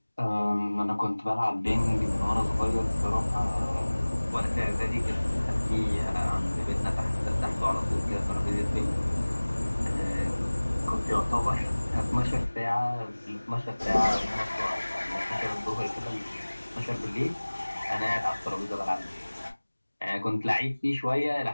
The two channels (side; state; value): both; inverted; correlation -1.00